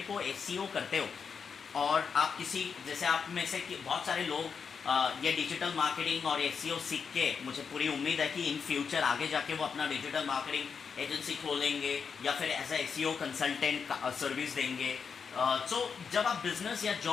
को एसईओ करते हो, और आप किसी, जैसे आप में से बहुत सारे लोग ये डिजिटल मार्केटिंग और एसईओ सीख के, मुझे पूरी उम्मीद है कि इन फ्यूचर आगे जाके वो अपना डिजिटल मार्केटिंग एजेंसी खोलेंगे या फिर as a SEO consultant service देंगे। सो जब आप बिजनेस या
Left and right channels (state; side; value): quieter; right; 6.1 dB